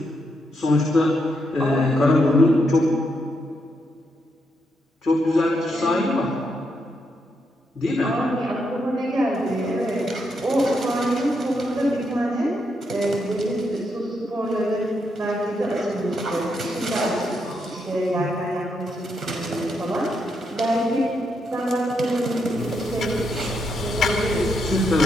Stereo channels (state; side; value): normal; both; correlation 0.80